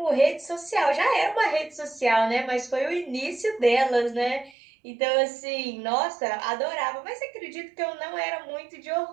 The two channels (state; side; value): drops out; left; at 4.5 s